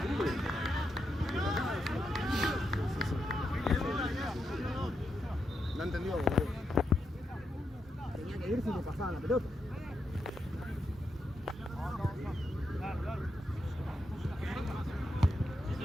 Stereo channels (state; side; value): normal; both; correlation 0.84